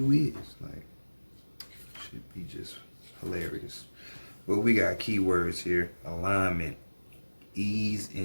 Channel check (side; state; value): both; inverted; correlation -1.00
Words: is. Like, should be just hilarious. But we got keywords here: alignment, ease